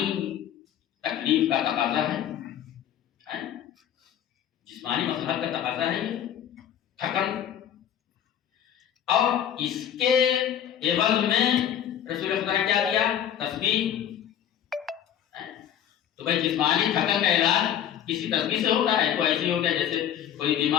تکلیف کا تقاضا ہے، جسمانی مسئلہ کا تقاضا ہے یہ تھکن. اور اس کے عوض میں رسول خدا نے کیا دیا؟ تسبیح. تو بھائی جسمانی تھکن کا علاج کسی تسبیح سے ہوتا ہے؟ تو ایسے ہو گیا جیسے کوئی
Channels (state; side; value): quieter; right; 10.0 dB